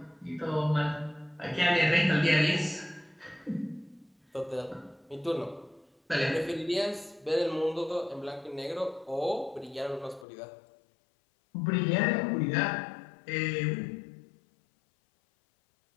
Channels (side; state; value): right; drops out; at 10.2 s